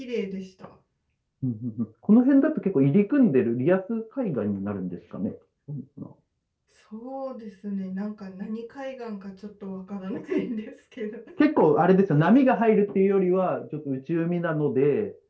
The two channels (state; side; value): identical; both; correlation 1.00